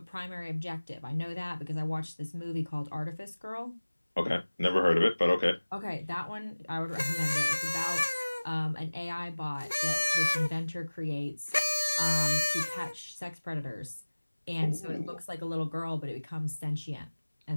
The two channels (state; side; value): inverted; both; correlation -1.00